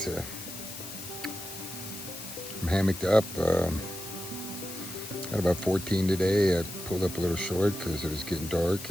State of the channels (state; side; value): noise; left; hiss, 10 dB below the sound